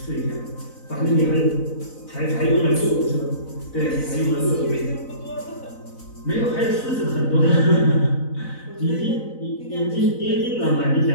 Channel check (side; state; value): right; late; 4.0 ms